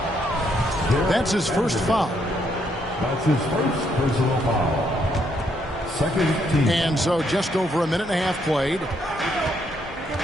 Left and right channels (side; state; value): both; normal; correlation 0.73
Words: That's his first foul. That's his first personal foul. Second team. And so just over a minute and a half played.